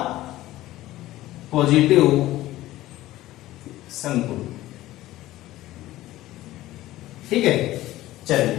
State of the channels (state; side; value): quieter; right; 15.9 dB